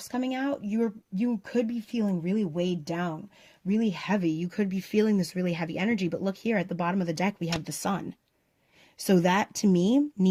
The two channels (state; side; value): identical; both; correlation 1.00